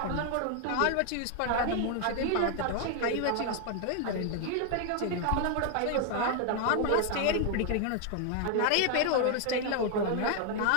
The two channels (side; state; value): both; different; correlation 0.00